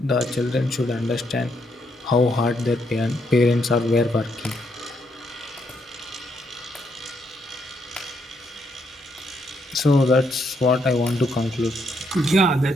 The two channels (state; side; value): normal; both; correlation 0.76